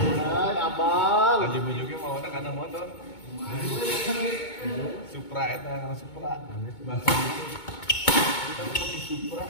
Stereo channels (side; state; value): right; late; 2.2 ms